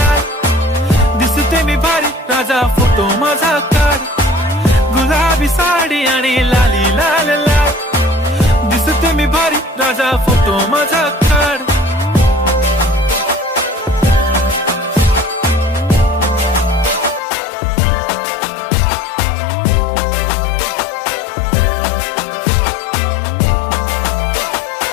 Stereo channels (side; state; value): right; drops out; at 17.2 s